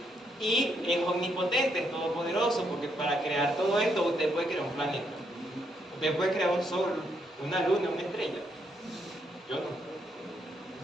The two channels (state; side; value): normal; both; correlation 0.76